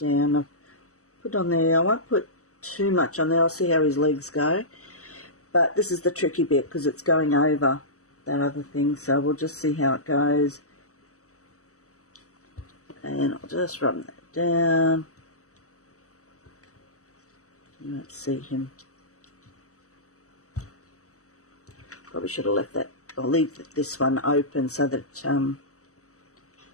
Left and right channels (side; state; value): right; late; 0.65 ms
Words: I'll put on there. I won't put too much on there. I'll see how his legs go. But this is the tricky bit because it's going over that other thing. So we'll just see how it goes. And I'll just rub that down. You won't see him. Probably should have left that. I'll leave this one open so that